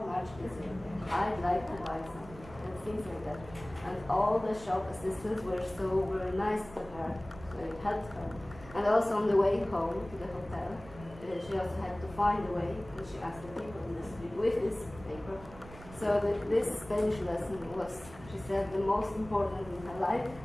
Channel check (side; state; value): right; noise; rumble, 18 dB below the sound